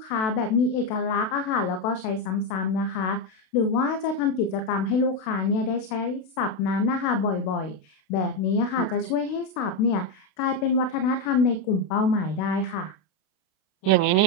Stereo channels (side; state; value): right; late; 32 ms